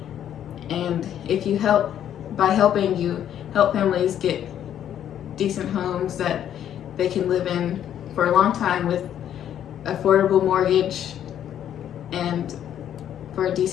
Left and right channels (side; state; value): right; quieter; 10.3 dB